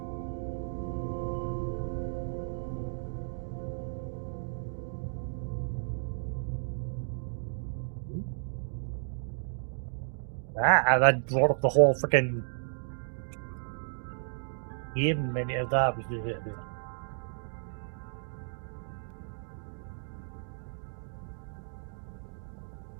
That brought up the whole freaking game menu of that.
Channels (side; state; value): left; silent; digital silence